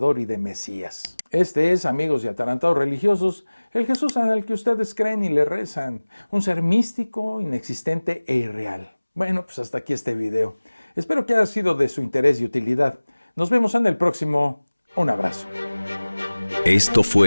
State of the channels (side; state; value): both; inverted; correlation -1.00